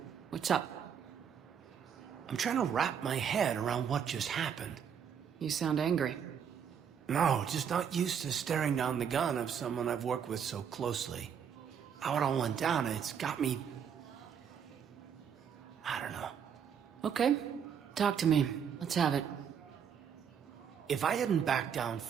What's up? I'm trying to wrap my head around what just happened. You sound angry. No, just not used to staring down the gun of someone I've worked with so closely. How it all went down, it's got me... I don't know. Okay. Talk to me. Let's have it. If I hadn't backed down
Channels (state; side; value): quieter; left; 7.8 dB